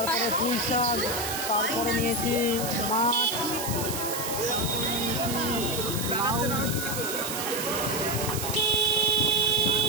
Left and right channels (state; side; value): noise; right; hiss, 5 dB below the sound